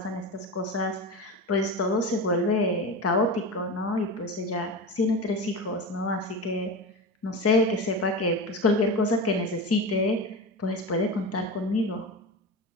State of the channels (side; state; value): both; normal; correlation 0.25